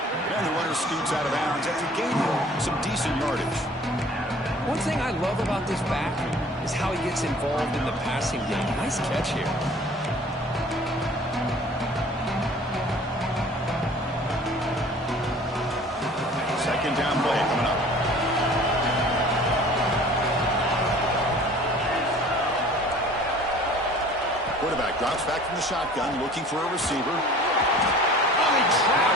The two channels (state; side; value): normal; both; correlation 0.48